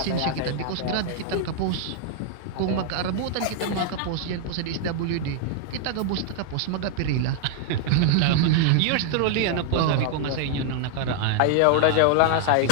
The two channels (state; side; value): different; both; correlation 0.00